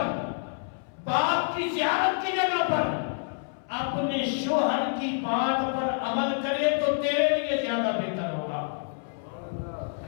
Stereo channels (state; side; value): silent; right; 60 dB below the other